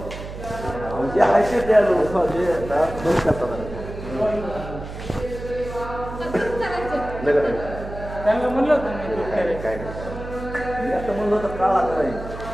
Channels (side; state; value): right; noise; hum, 10 dB below the sound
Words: जे आहे ते त्यांना म्हणलं होतं काय म्हणलं होतं काळा नाही.